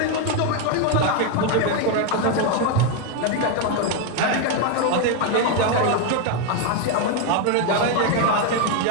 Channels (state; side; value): different; both; correlation 0.01